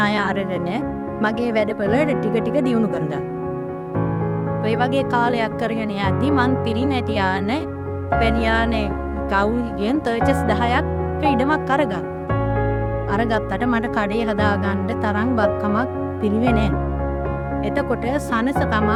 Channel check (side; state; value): both; identical; correlation 1.00